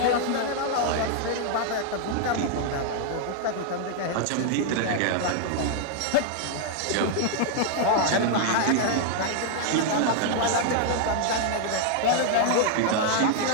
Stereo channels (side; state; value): both; different; correlation 0.00